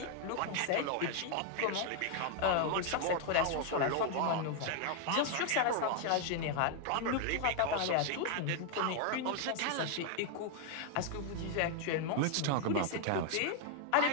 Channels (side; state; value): both; different; correlation 0.00